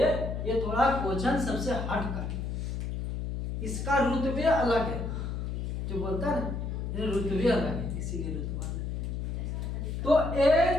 ये थोड़ा क्वेश्चन सबसे हट का, इसका रुतबे अलग है। जो बोलता है ना रुतबे अलग है, इसीलिए रुतबा अलग है। तो n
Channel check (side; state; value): left; noise; hum, 3 dB below the sound